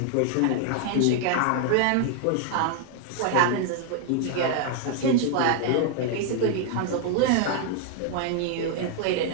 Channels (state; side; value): different; both; correlation 0.00